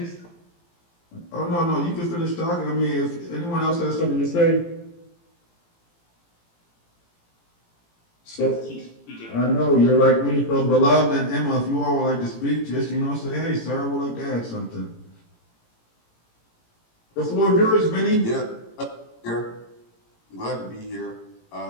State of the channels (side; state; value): right; late; 17 ms